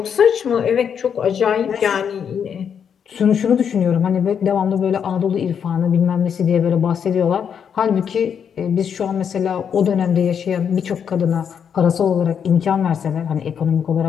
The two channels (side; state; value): right; quieter; 7.6 dB